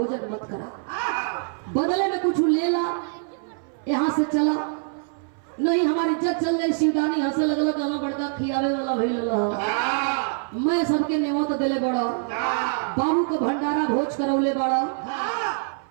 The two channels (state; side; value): silent; left; 60 dB below the other